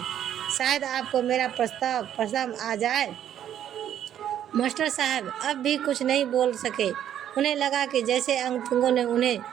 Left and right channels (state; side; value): quieter; left; 10.4 dB